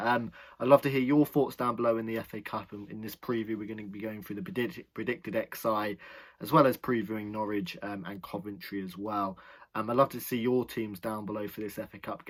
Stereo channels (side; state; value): both; identical; correlation 1.00